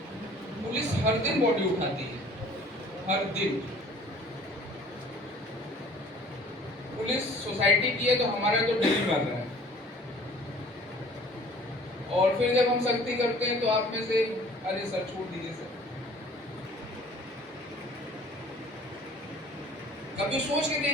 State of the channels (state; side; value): normal; both; correlation 0.51